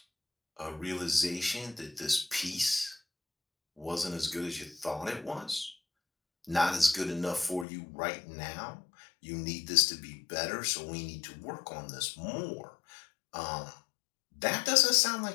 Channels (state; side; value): drops out; right; at 7.7 s